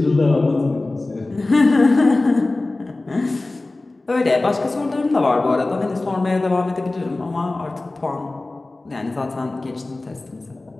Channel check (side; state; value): right; quieter; 3.0 dB